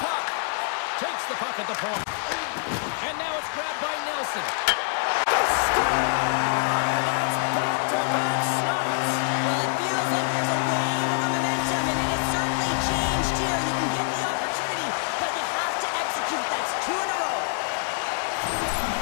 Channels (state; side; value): silent; right; digital silence